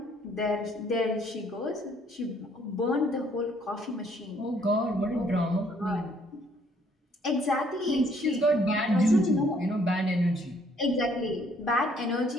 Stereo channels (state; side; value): normal; both; correlation 0.64